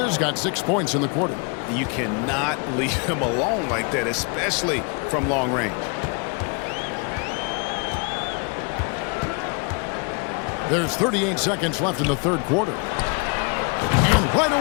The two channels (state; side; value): quieter; right; 34.2 dB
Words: got 6 points in the quarter. You cannot leave him alone like that, especially from long range. There's 38 seconds left in the third quarter. And right